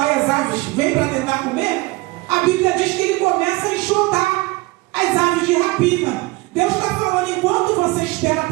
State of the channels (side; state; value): left; quieter; 22.3 dB